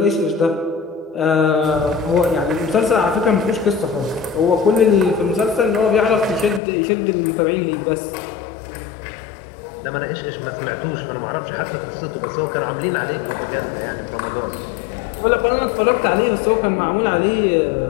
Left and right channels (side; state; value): right; drops out; at 6.6 s